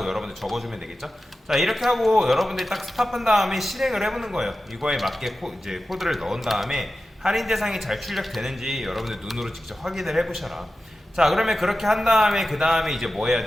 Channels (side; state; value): both; normal; correlation 0.93